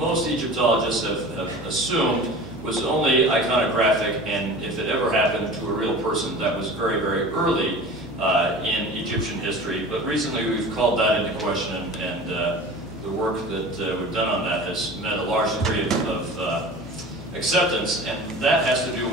Egyptologists have assumed was only iconographic, and if it ever happened to a real person, that was very, very early in Egyptian history. But recently we've called that into question, and the work that we've done on that has met a large degree of acceptance, and that has to do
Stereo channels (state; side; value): noise; left; hum, 17 dB below the sound